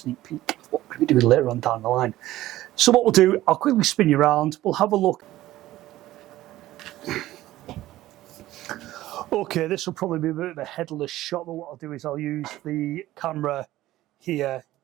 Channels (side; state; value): left; quieter; 15.5 dB